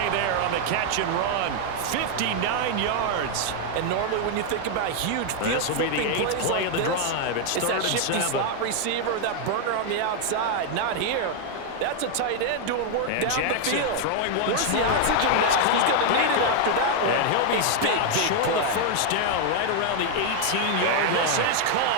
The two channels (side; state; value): both; different; correlation 0.00